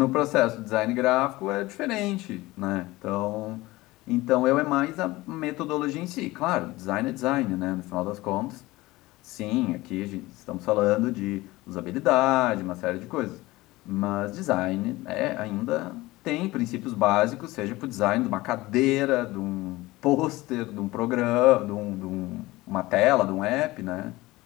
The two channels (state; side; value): quieter; right; 19.5 dB